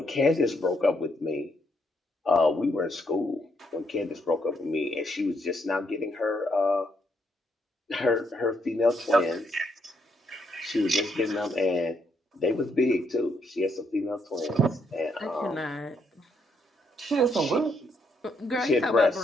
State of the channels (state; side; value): normal; both; correlation 0.75